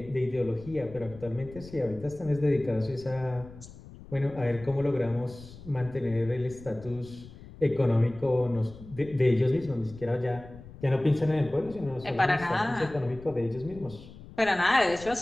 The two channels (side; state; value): left; noise; rumble, 17 dB below the sound